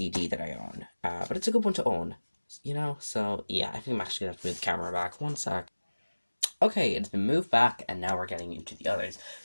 that I own. But it's a good one to own, you know? So, yeah, I think I'm actually going to have to move the camera back. One sec. Okay, it's been moved back, and now we're getting into the others.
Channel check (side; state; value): both; inverted; correlation -1.00